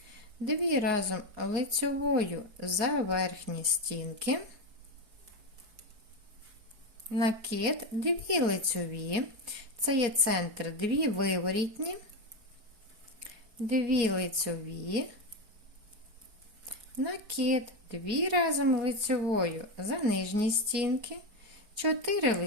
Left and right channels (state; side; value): late; left; 4.7 ms